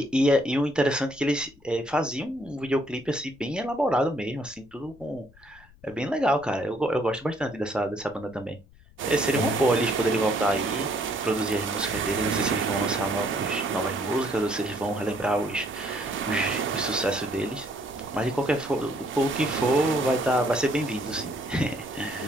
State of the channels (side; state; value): left; noise; rumble, 26 dB below the sound